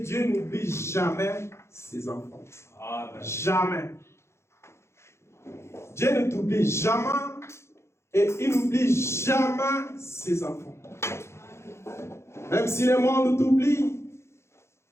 n'oublie jamais ses enfants. Amen. Jamais. Dieu ne t'oublie jamais et il n'oublie jamais ses enfants. Même si le monde t'oublie,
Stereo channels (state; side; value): late; right; 0.13 ms